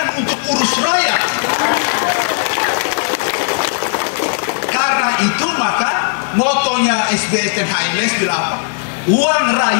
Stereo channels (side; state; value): right; silent; digital silence